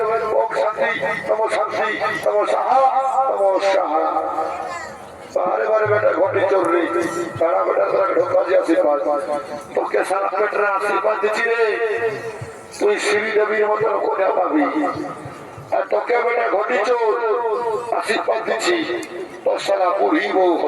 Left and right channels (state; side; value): identical; both; correlation 1.00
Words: ওম শান্তি নমঃ সাহা নমঃ সাহা বারে বারে বেটা ঘটে চোররি তারা বেটা তারা ঢোকা দিয়ে আশীর্বাদ তোকে সারা পেটরা আশীর্বাদ দিচ্ছি রে তুই শ্রীদেবীর মতন কোনে পাবি আর তোকে বেটা ঘটি চোর আশীর্বাদ দিচ্ছি তোর সারা পড়িব